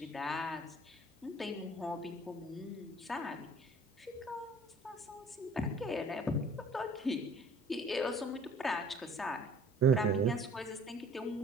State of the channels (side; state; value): both; normal; correlation 0.52